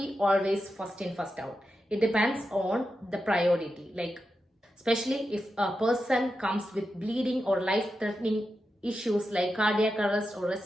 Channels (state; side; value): normal; both; correlation 0.89